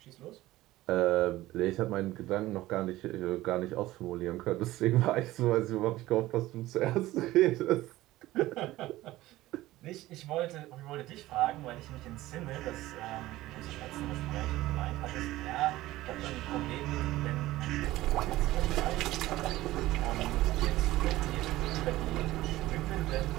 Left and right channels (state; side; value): quieter; left; 16.8 dB